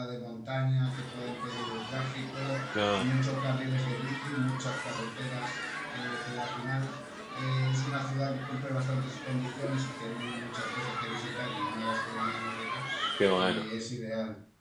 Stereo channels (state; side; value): identical; both; correlation 1.00